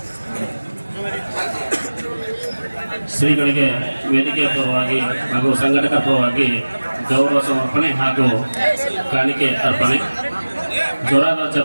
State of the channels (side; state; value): both; inverted; correlation -1.00